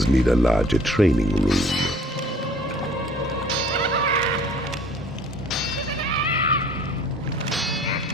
need a larger training room.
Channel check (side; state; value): both; normal; correlation 0.52